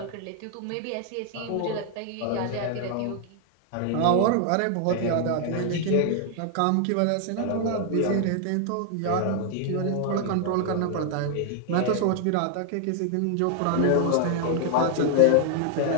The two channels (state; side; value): different; both; correlation 0.00